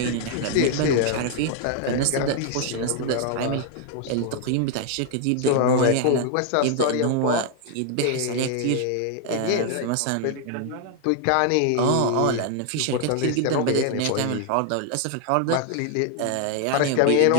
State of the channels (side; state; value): both; different; correlation 0.00